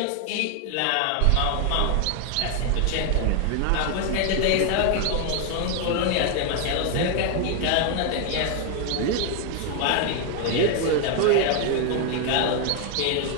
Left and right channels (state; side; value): different; both; correlation 0.01